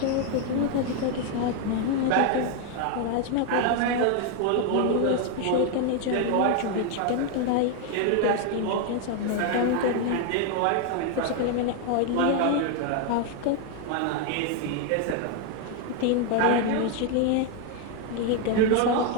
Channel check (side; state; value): both; different; correlation 0.01